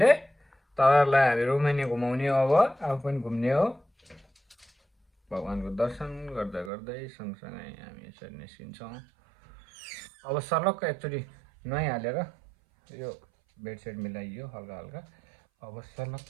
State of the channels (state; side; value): drops out; left; at 6.7 s